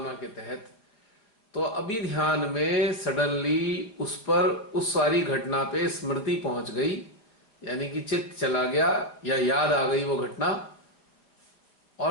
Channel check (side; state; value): right; late; 4.8 ms